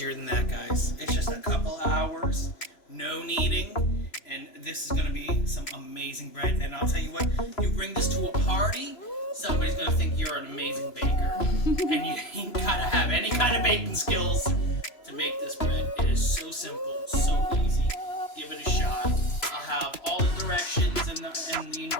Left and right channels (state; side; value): late; right; 3.0 ms